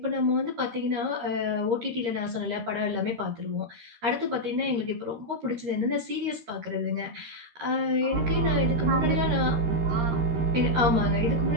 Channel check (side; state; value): left; late; 13 ms